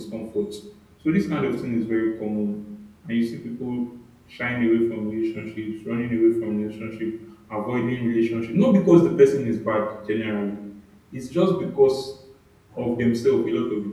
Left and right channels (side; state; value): both; identical; correlation 1.00